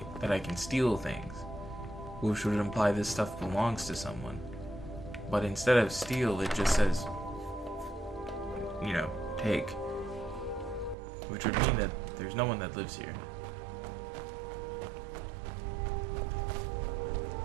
that I can steal things, which would imply this stuff belongs to someone. But instead of steal, it just says, you know, take. Which would mean that there's no one that lives here.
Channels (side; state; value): left; drops out; at 11.0 s